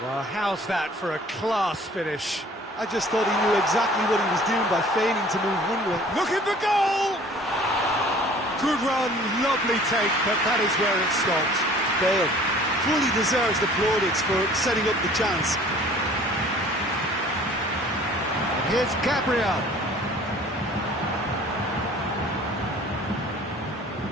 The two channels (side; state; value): both; normal; correlation 0.50